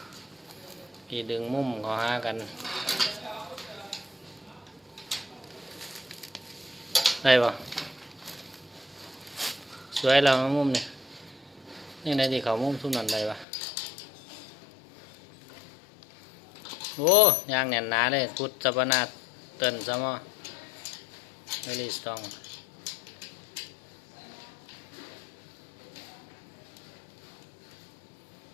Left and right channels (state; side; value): drops out; right; at 13.5 s